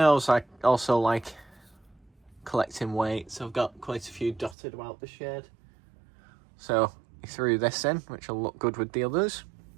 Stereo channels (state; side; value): drops out; left; at 4.5 s